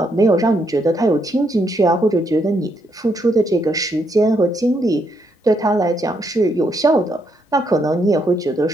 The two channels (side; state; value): both; normal; correlation 0.76